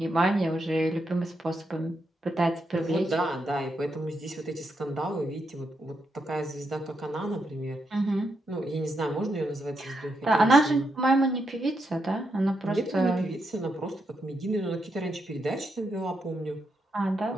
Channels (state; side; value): normal; both; correlation 0.82